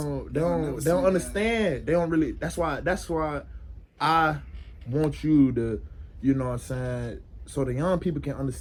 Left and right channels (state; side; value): identical; both; correlation 1.00